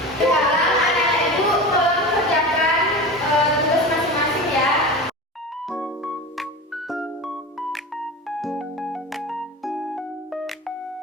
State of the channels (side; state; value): both; normal; correlation 0.29